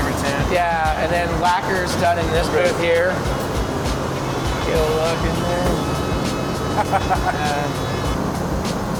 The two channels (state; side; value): identical; both; correlation 1.00